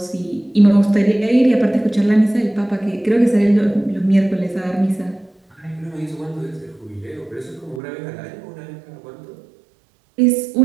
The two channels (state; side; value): drops out; left; at 7.8 s